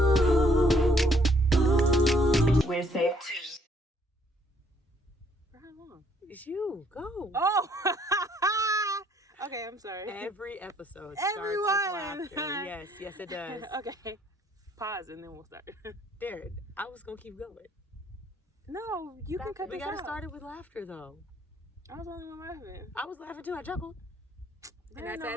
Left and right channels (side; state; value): both; normal; correlation 0.65